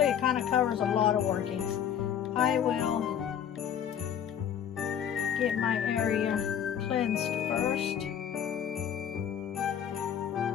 it kind of covers a lot of workings. I will get my area cleansed first.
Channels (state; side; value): quieter; right; 8.9 dB